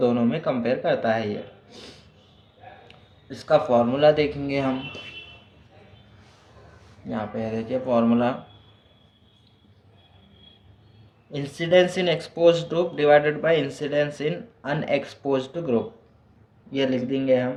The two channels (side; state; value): both; identical; correlation 1.00